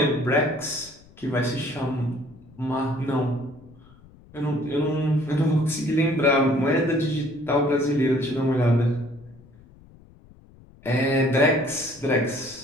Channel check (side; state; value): left; noise; rumble, 25 dB below the sound